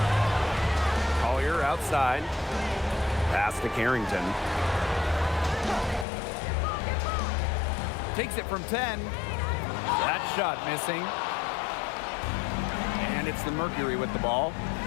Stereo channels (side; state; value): right; drops out; at 6.1 s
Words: Collier outside. Pass to Carrington. Takes it from 10. That shot missing. And it's the Mercury with the ball.